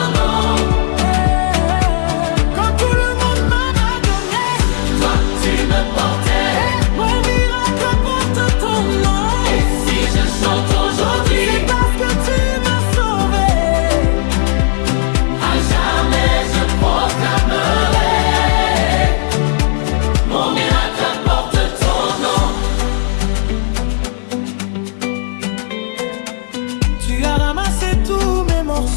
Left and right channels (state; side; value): silent; right; digital silence